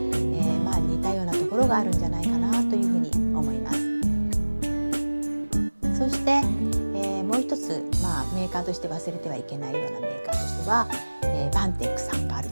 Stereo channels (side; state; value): both; inverted; correlation -1.00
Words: たようなところがあるんじゃないかなというふうに思います。そして、もう一つ、メーカーとして忘れてはいけないようなメーカーとしては、バンテックさんがある